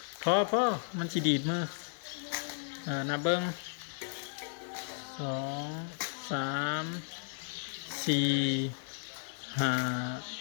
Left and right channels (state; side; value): silent; right; 55 dB below the other